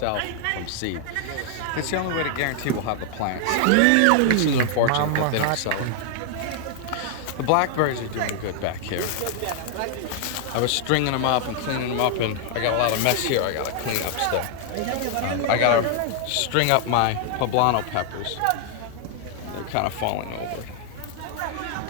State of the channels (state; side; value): different; both; correlation 0.00